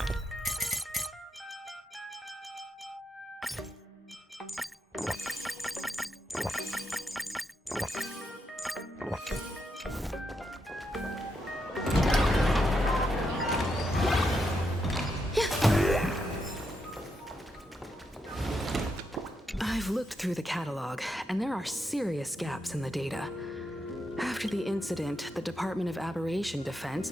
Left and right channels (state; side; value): normal; both; correlation 0.82